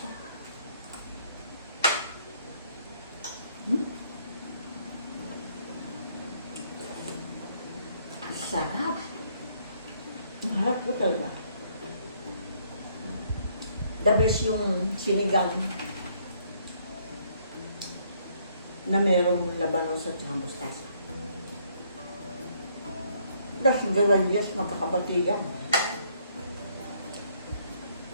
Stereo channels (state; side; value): inverted; both; correlation -0.67